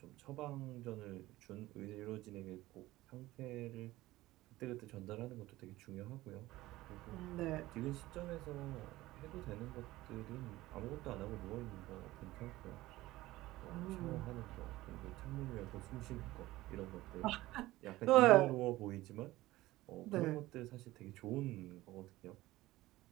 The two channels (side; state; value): left; quieter; 17.6 dB